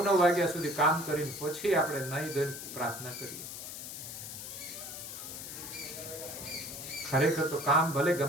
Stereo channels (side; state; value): left; noise; hiss, 9 dB below the sound